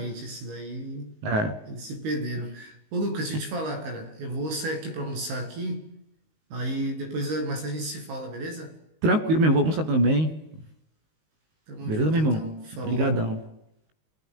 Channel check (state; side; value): late; left; 19 ms